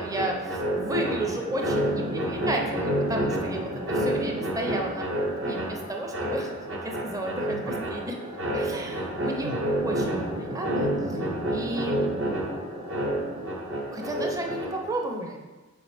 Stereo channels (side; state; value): both; normal; correlation 0.46